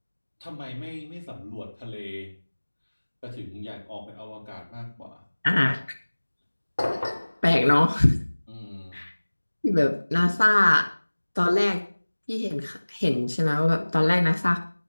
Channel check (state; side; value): inverted; both; correlation -1.00